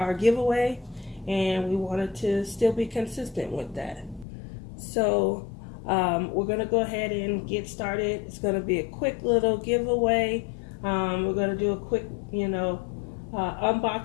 giveaway, and we wanted to still be consistent with that. So we're going to go ahead and get started. It's going to be a quick little giveaway. We're going to do a quick,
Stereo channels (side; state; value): right; drops out; at 4.2 s